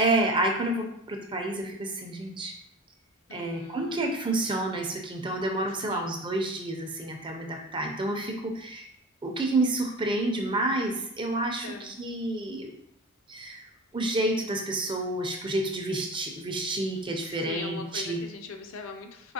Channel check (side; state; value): both; normal; correlation 0.36